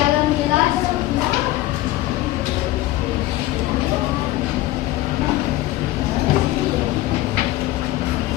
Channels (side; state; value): right; quieter; 16.4 dB